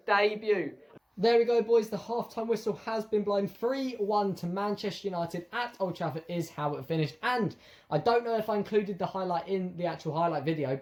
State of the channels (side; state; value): both; identical; correlation 1.00